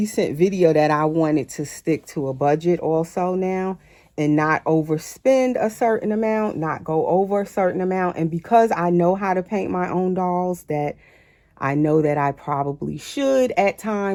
video that I wanted to stick to a budget also now, and not overspend a certain amount, not go over a certain amount. And because I know how to paint my own dolls, that I know that I probably should at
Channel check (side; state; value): both; identical; correlation 1.00